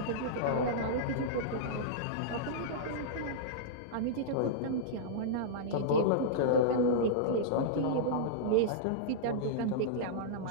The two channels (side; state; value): both; different; correlation -0.03